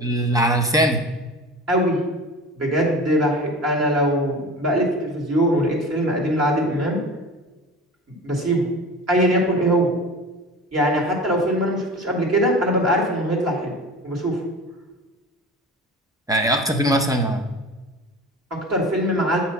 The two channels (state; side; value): normal; both; correlation 0.35